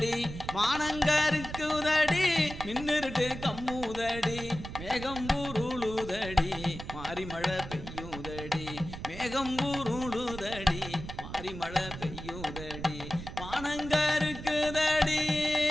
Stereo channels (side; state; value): right; noise; rumble, 10 dB below the sound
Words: மானங்கருக்குதடி மின்னிருட்டு கம்முதடி மேகம் உருளுதடி மாறி மழை பெய்யுதடி மேகம் உருளுதடி மாறி மழை பெய்யுதடி மானங்கருக்குதடி